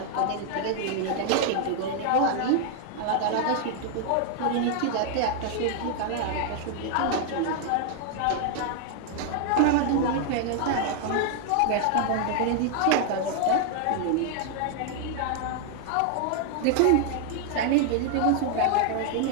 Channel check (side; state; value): both; different; correlation 0.00